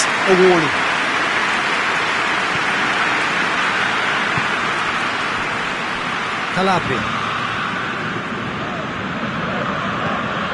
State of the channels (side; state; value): both; identical; correlation 1.00